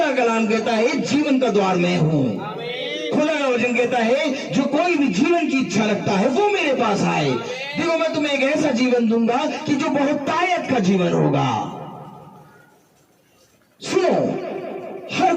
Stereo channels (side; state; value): both; identical; correlation 1.00